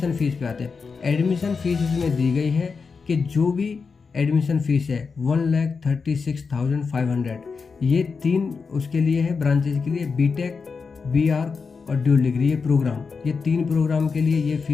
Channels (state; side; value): quieter; right; 5.1 dB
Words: फ़ीस पे आते हैं। एडमिशन फ़ीस इसमें दी गई है कि जो भी एडमिशन फ़ीस है 1,36,500, ये 3 उसके लिए है ब्रांचेज के लिए, बीटेक, बीआर और ड्यूल डिग्री, ये प्रोग्राम, ये 3 प्रोग्राम के लिए ये